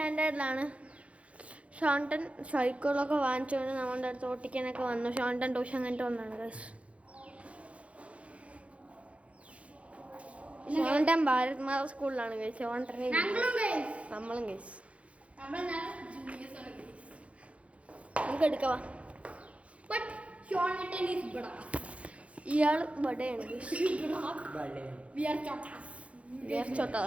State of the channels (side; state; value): left; late; 0.063 ms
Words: ഷോണ്ടൻ സൈക്കിളൊക്കെ വാങ്ങിച്ചുകൊണ്ട് നമ്മുടെ അടുത്ത് ഓട്ടിക്കാനൊക്കെ വന്നു. ഷോണ്ടൻ ട്യൂഷൻ കഴിഞ്ഞിട്ട് വന്നാണ് ഗൈസ്. ഷോണ്ടൻ ഭാരത് മാത സ്കൂളിലാണ് ഗൈസ്. ഷോണ്ടൻ നമ്മളും ഗൈസ്. നമുക്ക് എടുക്കാം. ഇയാൾ ബഡയാണ് ഗൈസ്.